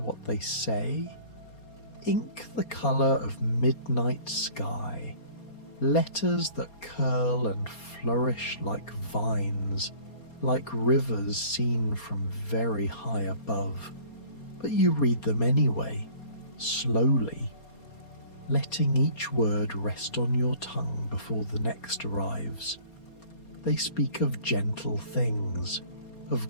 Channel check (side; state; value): right; late; 4.3 ms